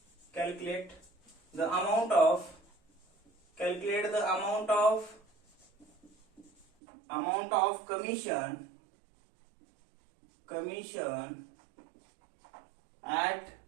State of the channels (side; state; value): left; drops out; at 6.7 s